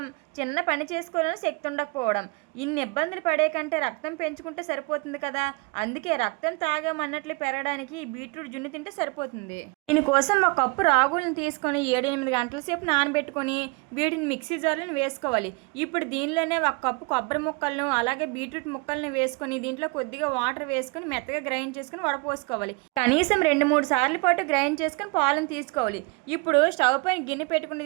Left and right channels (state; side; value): quieter; left; 28.1 dB